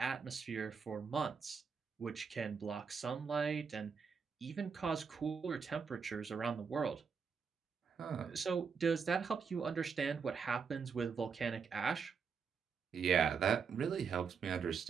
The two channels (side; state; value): left; quieter; 5.9 dB